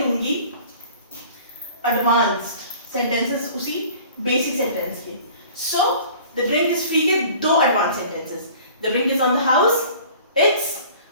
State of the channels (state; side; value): inverted; both; correlation -0.47